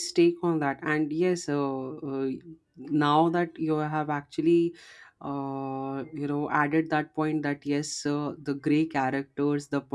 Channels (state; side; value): identical; both; correlation 1.00